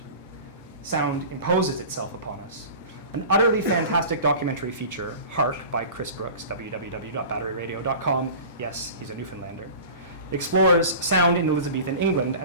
Sound imposes itself upon us. An utterly fantastic documentary feature, Hark, by Chris Brooks, www.batteryradio.com, yes, he's a Newfoundlander, explores sound in Elizabethan England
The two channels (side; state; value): both; inverted; correlation -0.38